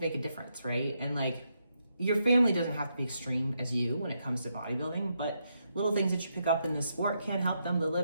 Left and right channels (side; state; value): both; inverted; correlation -0.80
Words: make a difference, right? And like your family doesn't have to be extreme as you when it comes to bodybuilding, but little things that you pick up in the sport can help them to